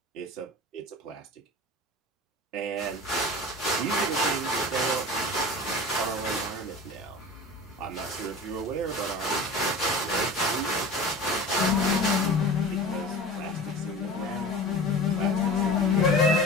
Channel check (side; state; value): both; normal; correlation 0.36